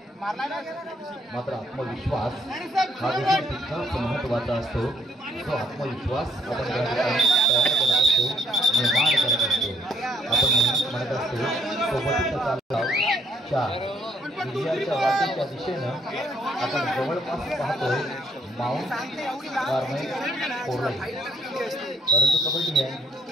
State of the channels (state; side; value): normal; both; correlation 0.67